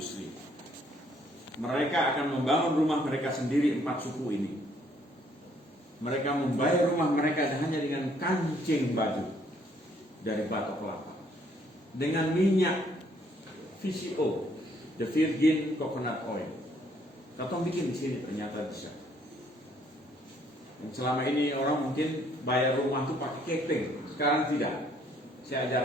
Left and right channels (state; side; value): normal; both; correlation 0.65